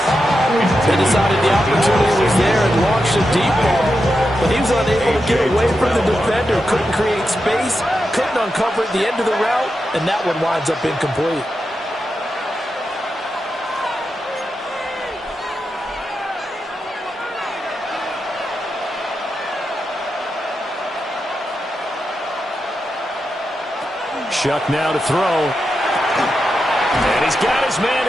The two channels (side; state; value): both; normal; correlation 0.88